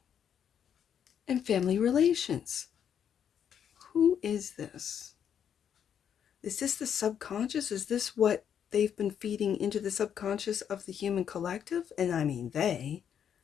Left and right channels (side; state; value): right; quieter; 8.6 dB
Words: and family relations. Who is this? Is this the subconscious? Is this what they've been feeding into the subconscious of the human collective? And I mean they,